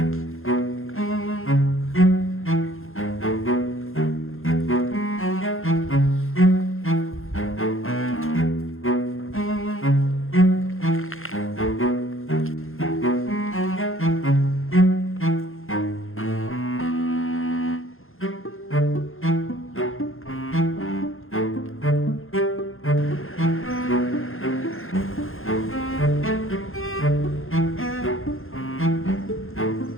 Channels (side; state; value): right; late; 0.60 ms